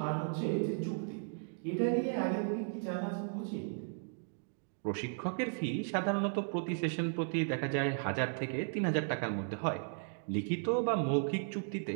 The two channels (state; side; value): silent; left; digital silence